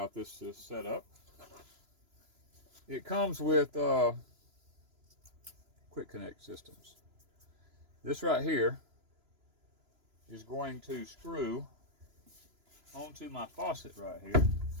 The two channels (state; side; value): late; left; 3.0 ms